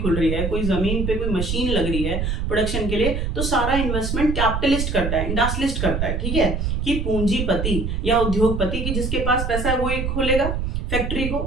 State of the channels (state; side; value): noise; right; rumble, 1 dB below the sound